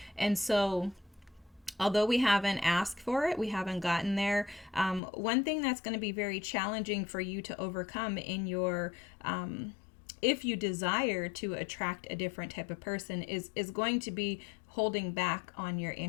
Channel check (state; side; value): drops out; right; at 5.0 s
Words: And so although we haven't asked for it, we haven't gotten there, one thing that's going to be very challenging for you to overcome in your if you desire to attract a different type of person is going to be holding back on your